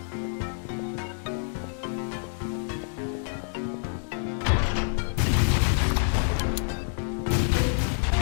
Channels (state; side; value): silent; right; digital silence